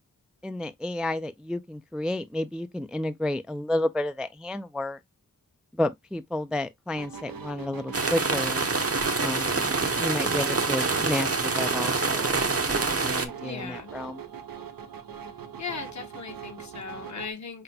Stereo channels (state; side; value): normal; both; correlation 0.33